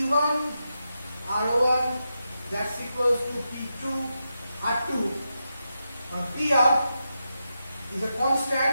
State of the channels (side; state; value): both; inverted; correlation -0.87